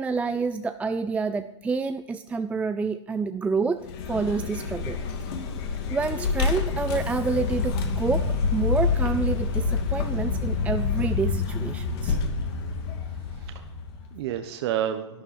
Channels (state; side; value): normal; both; correlation 0.13